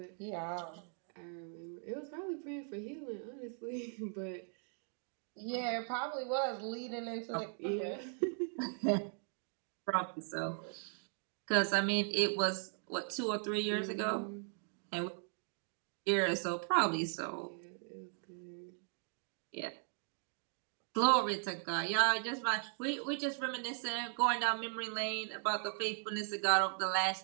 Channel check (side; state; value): left; silent; 52 dB below the other